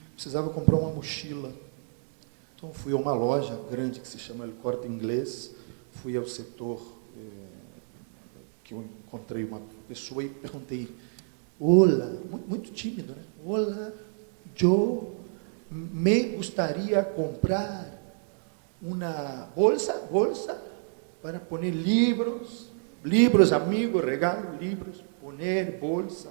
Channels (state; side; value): silent; left; digital silence